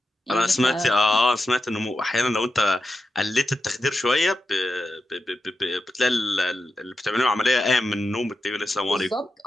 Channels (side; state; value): both; normal; correlation 0.88